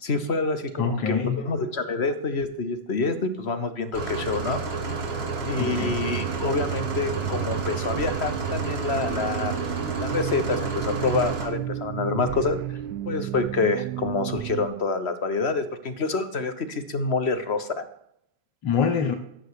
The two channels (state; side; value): late; right; 3.1 ms